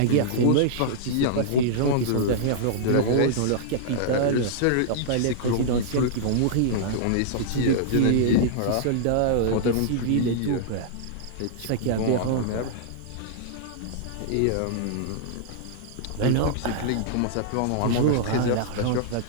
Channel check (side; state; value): both; different; correlation -0.02